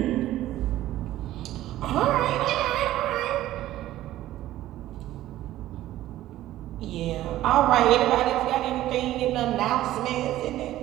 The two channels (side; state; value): left; quieter; 14.4 dB